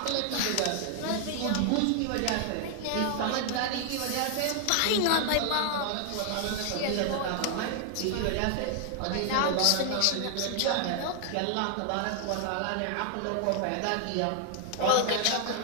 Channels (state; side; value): different; both; correlation 0.00